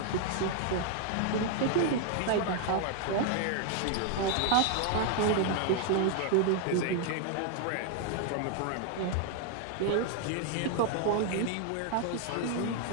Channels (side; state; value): both; different; correlation 0.00